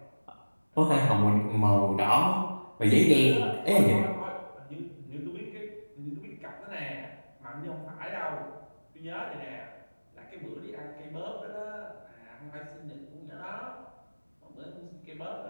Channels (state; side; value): inverted; both; correlation -1.00